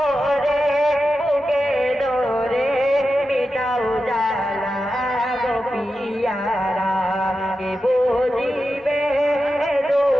বুকে ধরে মিটাও জ্বালা গো পিয়ারা কে বুঝিবে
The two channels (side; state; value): both; normal; correlation 0.91